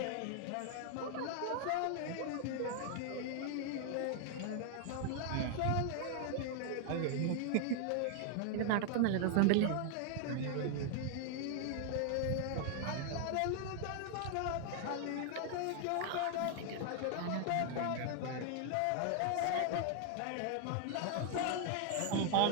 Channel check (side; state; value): both; different; correlation 0.00